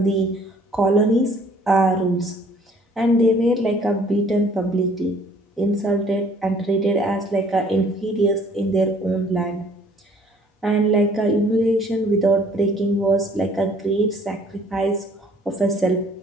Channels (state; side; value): normal; both; correlation 0.57